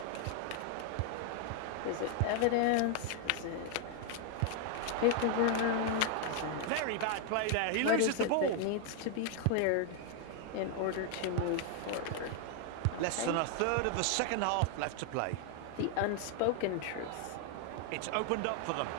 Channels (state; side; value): different; both; correlation 0.00